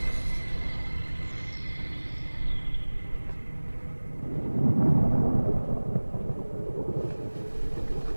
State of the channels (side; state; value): both; inverted; correlation -1.00